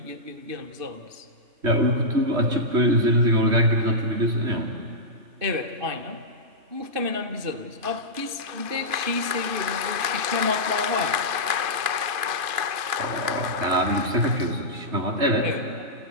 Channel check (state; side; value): late; left; 2.5 ms